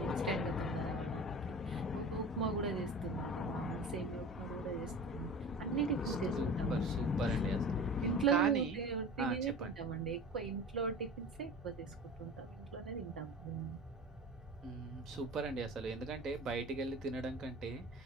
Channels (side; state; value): both; normal; correlation 0.35